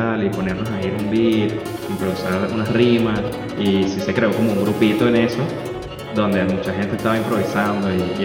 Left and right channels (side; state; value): both; identical; correlation 1.00